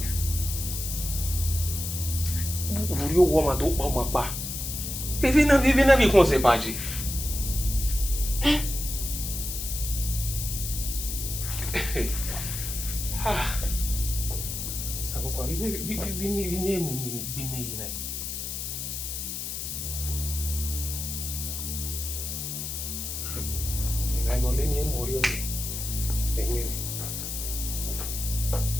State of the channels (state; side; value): noise; left; hiss, 5 dB below the sound